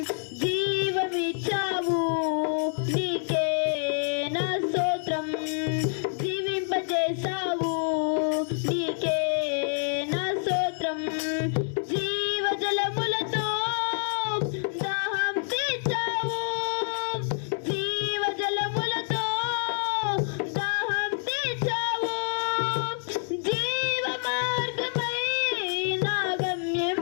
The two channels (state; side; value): silent; right; 60 dB below the other